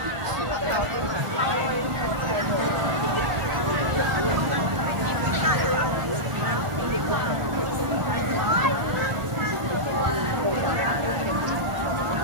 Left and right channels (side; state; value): left; late; 1.4 ms